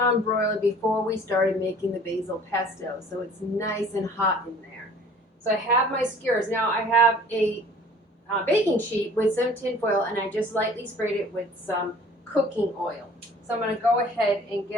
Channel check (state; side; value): normal; both; correlation 0.50